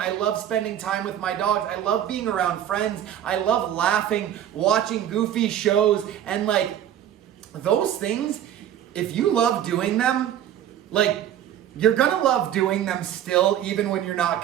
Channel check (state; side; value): quieter; left; 10.7 dB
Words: love spending time with my dogs. I love being around friends. I love laughing, watching goofy shows, and like those things, if you love doing them, like you're gonna love doing them still, even when you're not